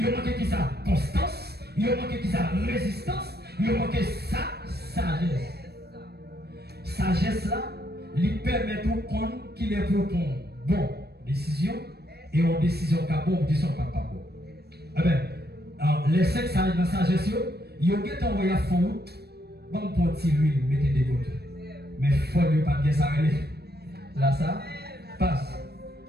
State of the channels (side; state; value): left; late; 0.47 ms